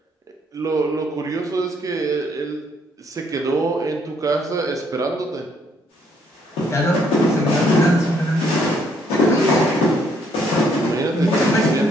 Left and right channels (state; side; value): normal; both; correlation 0.68